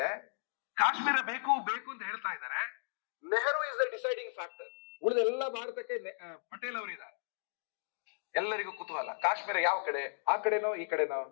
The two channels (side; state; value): right; silent; digital silence